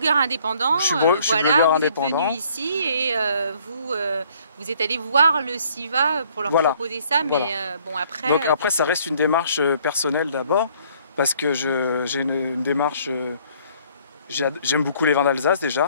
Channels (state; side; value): inverted; both; correlation -0.61